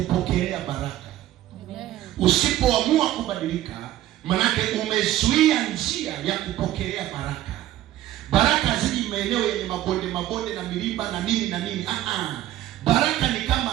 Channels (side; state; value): left; quieter; 13.8 dB